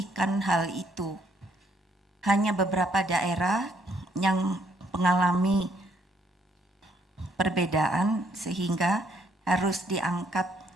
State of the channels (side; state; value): both; normal; correlation 0.68